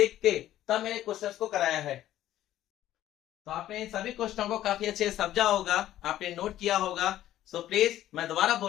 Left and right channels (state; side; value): quieter; right; 13.1 dB